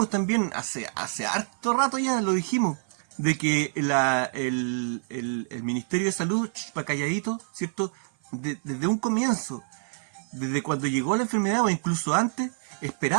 también hace harto rato ya, lo dijimos, de que el Ministerio de Salud, pa' calladito, ¿cierto? Desde un comienzo, desde cuando llegó la enfermedad o incluso antes,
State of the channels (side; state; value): left; silent; 55 dB below the other